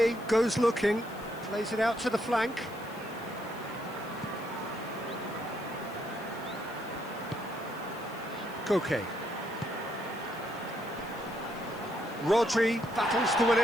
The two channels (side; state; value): left; noise; hiss, 21 dB below the sound